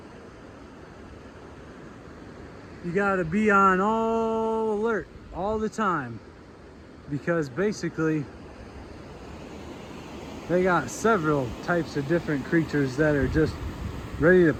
you gotta be on all alert all the time, because basically they got several types of different creatures that are just ready to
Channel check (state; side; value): identical; both; correlation 1.00